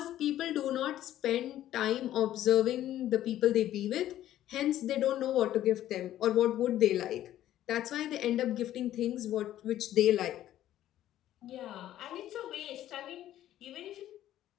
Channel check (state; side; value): quieter; right; 12.8 dB